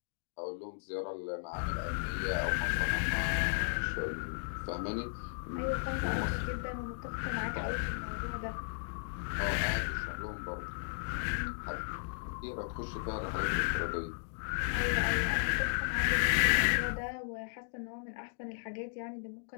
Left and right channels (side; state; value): right; silent; digital silence